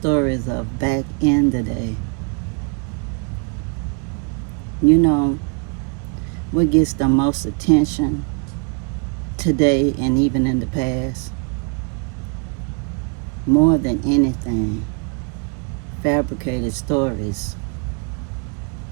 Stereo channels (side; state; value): left; quieter; 36.0 dB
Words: of back in the day. You know, what gets the most attention today and even in the past? More than anything, fabricated stories.